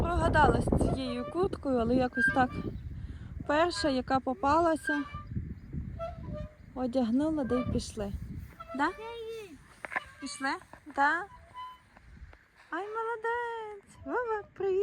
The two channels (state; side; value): identical; both; correlation 1.00